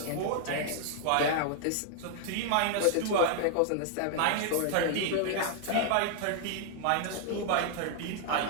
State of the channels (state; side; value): different; both; correlation -0.01